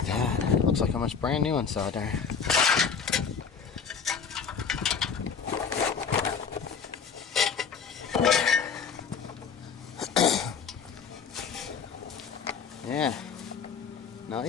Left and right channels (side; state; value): right; quieter; 6.2 dB